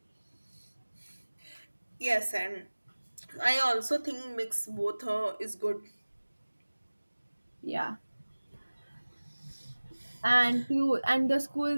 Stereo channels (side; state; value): both; inverted; correlation -1.00